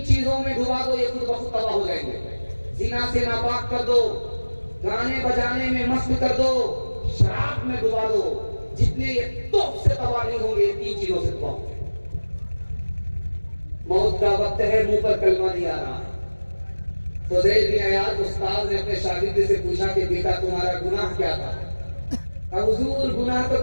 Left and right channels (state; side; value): inverted; both; correlation -1.00